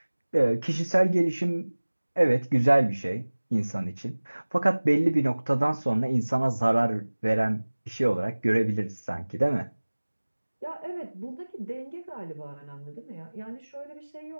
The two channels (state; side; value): inverted; both; correlation -1.00